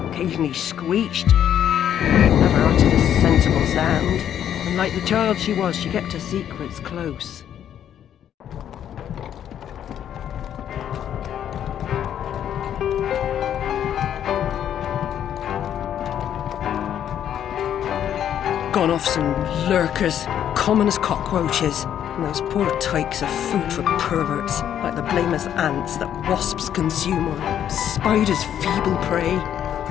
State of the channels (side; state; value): right; quieter; 10.0 dB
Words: occasionally screeched. Never uttered a sensible sound. And like the child she was, she kept her secrets close. Gone off some lurkers, common as cockroaches. And those poor tykes are food for perverts, like the blameless ants that wasps consume or spiders' feeble prey.